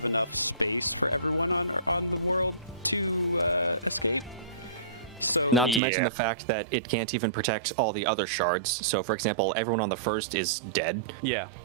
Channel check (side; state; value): left; drops out; at 5.8 s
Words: enough space for everyone on the world to escape. So, Not to mention Yeah. the fact that it can't even protect all the other shards. So, for example, everyone on the first is dead.